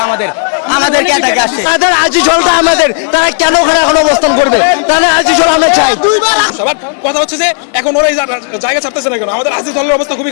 আমাদেরকে এটাকে আসছে। তাদের আজিজলটা আমাদের, তারা কেন ওখানে এখন অবস্থান করবে? তাহলে আজিজল আমরা চাই। সবার কথা হচ্ছে যে এখন ওরা এই জায়গা ছাড়তেছে না কেন, আমাদের আজিজলের অবস্থা খুবই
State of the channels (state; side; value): silent; right; digital silence